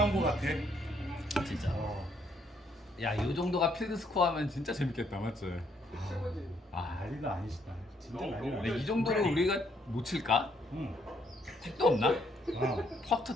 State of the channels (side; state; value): both; normal; correlation 0.70